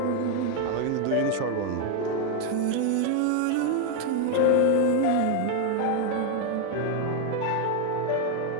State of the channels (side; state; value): both; different; correlation 0.01